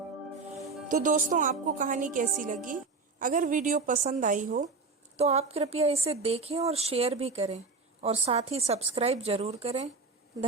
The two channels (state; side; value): quieter; left; 4.2 dB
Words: तो दोस्तों, आपको कहानी कैसी लगी? अगर वीडियो पसंद आई हो तो आप कृपया इसे देखें और शेयर भी करें और साथ ही सब्सक्राइब जरूर करें।